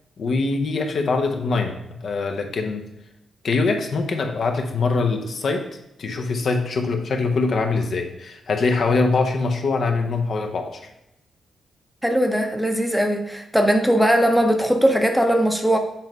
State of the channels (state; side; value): normal; both; correlation 0.86